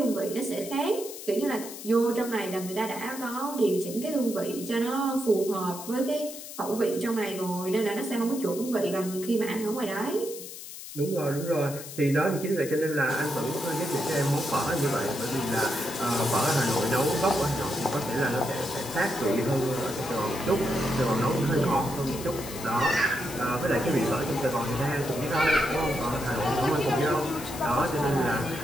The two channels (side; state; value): left; noise; hiss, 12 dB below the sound